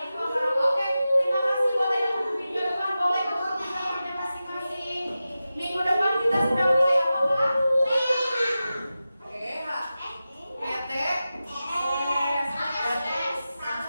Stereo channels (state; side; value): inverted; both; correlation -0.94